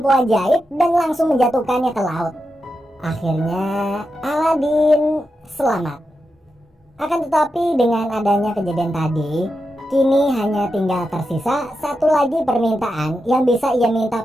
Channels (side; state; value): both; normal; correlation 0.88